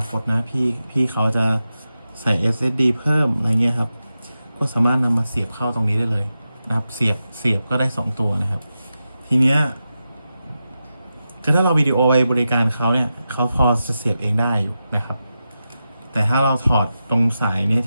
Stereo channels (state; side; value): inverted; both; correlation -0.91